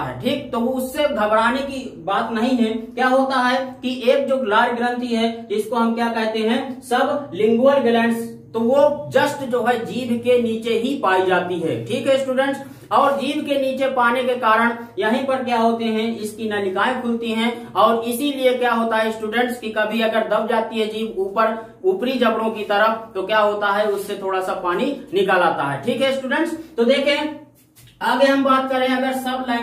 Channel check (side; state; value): both; identical; correlation 1.00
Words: ठीक, तो वो उससे घबराने की बात नहीं है। क्या होता है कि एक जो लार ग्रंथि है जिसको हम क्या कहते हैं, सब लिंगुअल ग्लैंड्स, तो वो जस्ट जो है जीभ के नीचे ही पाई जाती है। ठीक है स्टूडेंट्स, और जीभ के नीचे पाने के कारण यहीं पर क्या होते हैं, इसकी नलिकाएं खुलती हैं, और इसीलिए क्या होता है स्टूडेंट्स कि कभी अगर दब जाती है जीभ ऊपरी जबड़ों की तरफ, तो क्या होता है उससे थोड़ा सा पानी निकल आता है। ठीक है स्टूडेंट्स, तो देखें आगे हम बात करें अगर सब